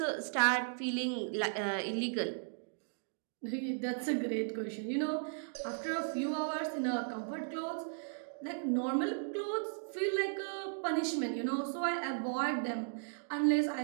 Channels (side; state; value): left; silent; digital silence